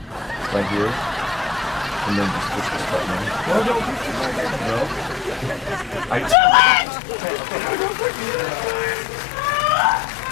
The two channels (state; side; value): drops out; right; at 6.4 s